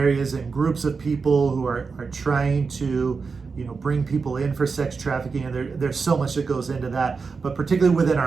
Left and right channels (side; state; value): left; quieter; 4.9 dB